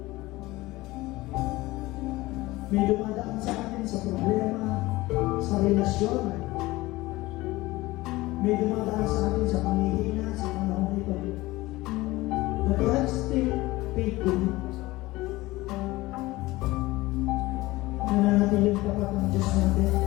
May dumadaan sa atin sa problema, sa relasyon. May dumadaan sa atin sa pangihina, sa panahon ito. But God still faithful. Nananatiling tapat ng Diyos natin.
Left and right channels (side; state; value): right; quieter; 19.5 dB